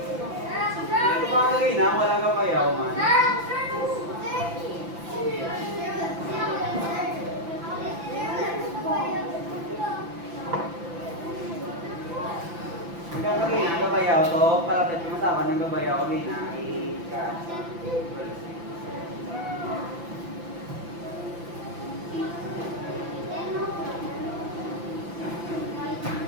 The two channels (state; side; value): late; left; 5.9 ms